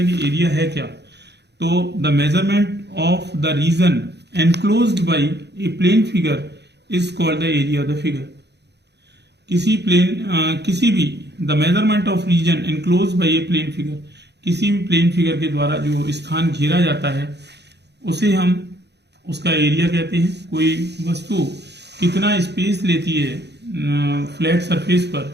कि एरिया है क्या। तो the measurement of the region enclosed by a plane figure is called the area of the figure. किसी भी the measurement of region enclosed by a plane figure, किसी भी प्लेन फिगर के द्वारा जो स्थान घेरा जाता है उसे हम उसका एरिया कहते हैं। कोई वस्तु कितना स्पेस लेती है फ्लैट सरफेस पर,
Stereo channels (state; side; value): late; left; 0.49 ms